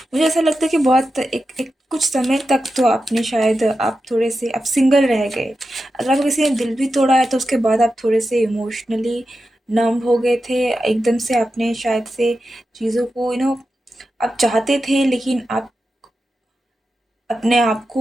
मुझे ऐसा लगता है कि बहुत एक एक कुछ समय तक तो आपने शायद आप थोड़े से आप सिंगल रह गए। अगर आपको किसी ने दिल भी तोड़ा है तो उसके बाद आप थोड़े से इमोशनली नम हो गए थे। एकदम से आपने शायद से चीज़ों को आप चाहते थे, लेकिन आप अपने आप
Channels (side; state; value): both; normal; correlation 0.90